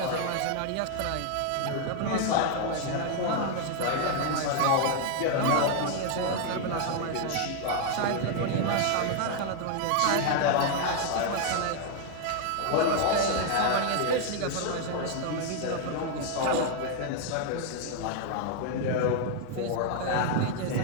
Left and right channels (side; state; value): both; different; correlation 0.00